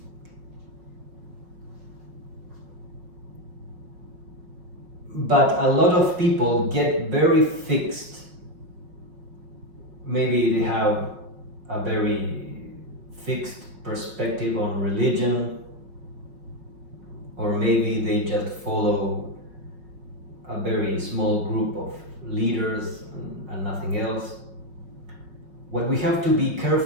But a lot of people get very fixed. Maybe they have a very fixed perspective on religion, or maybe they just follow a very small group of leaders and nothing else. What we have to be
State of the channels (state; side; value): late; left; 5.5 ms